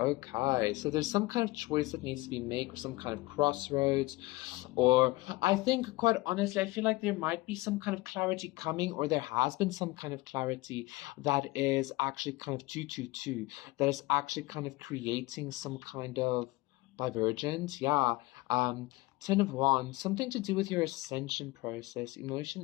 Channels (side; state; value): right; quieter; 20.8 dB